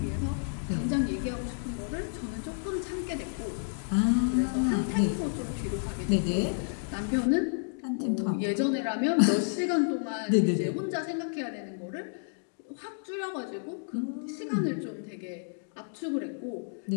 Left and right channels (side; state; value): right; silent; digital silence